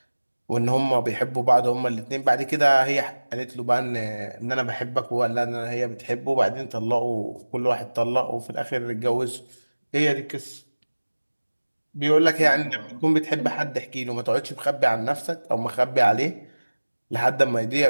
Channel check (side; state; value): both; inverted; correlation -1.00